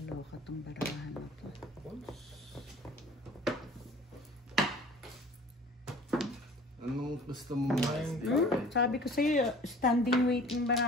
tong barahan na to. Anong gusto mo mas? Sabi ko sa'yo, standing waiting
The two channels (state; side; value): normal; both; correlation 0.47